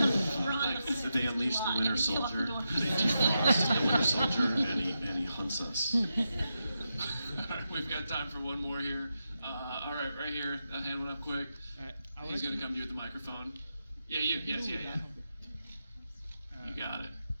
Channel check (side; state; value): both; inverted; correlation -0.87